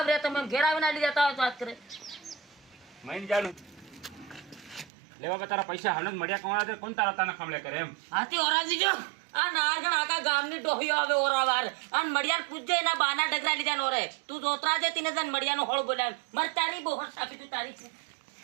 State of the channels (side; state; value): left; drops out; at 4.9 s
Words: રહ્યા તમે ઘેર આવીને આલી જતા હોય તો વાત કરે મહિન જાણું લે બાપા તારા પૈસા હમણાં જ મળ્યા કોણ કોણ તારા તાના ખમલે કરે એમ? હાથી ઓરાજી જો આ નાગણ આખા ગામની ડોહીઓ આવે ઓરાવાર અને મડિયાર પૂજે એના બાના ડગરા લીધા નો રે તું જોતરા જે તીને જન મડિયાનો હોળ બોલાવ મર તારી બોહર સાપી તું તારી